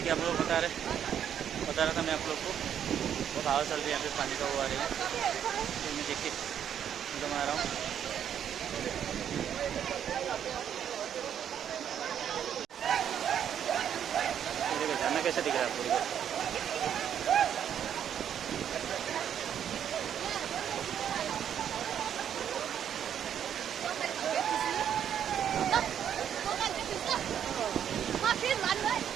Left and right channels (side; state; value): left; quieter; 9.2 dB